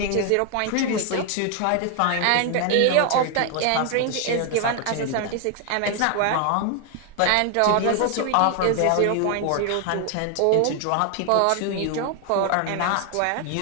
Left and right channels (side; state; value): both; different; correlation 0.00